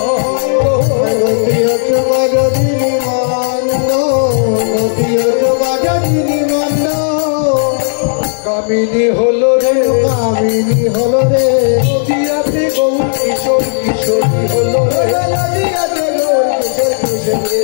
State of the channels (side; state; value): right; silent; digital silence